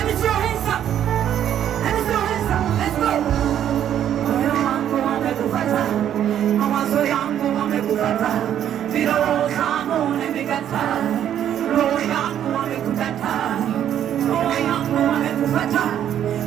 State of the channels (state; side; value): quieter; left; 10.3 dB